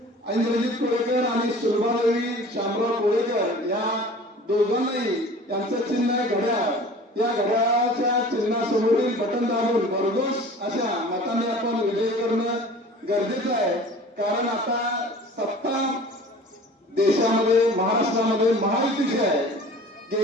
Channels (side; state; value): both; normal; correlation 0.44